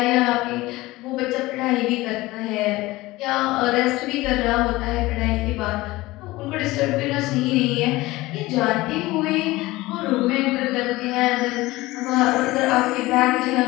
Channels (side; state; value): right; quieter; 19.3 dB